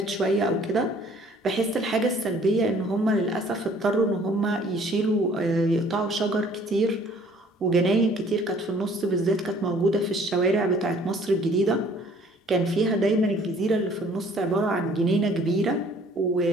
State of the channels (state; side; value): normal; both; correlation 0.56